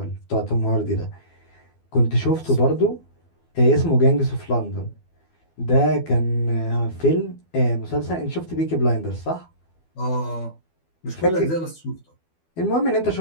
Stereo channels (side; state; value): right; late; 12 ms